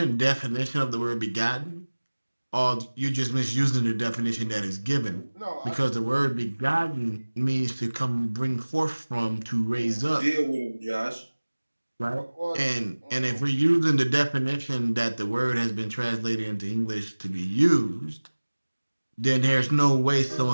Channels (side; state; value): both; inverted; correlation -1.00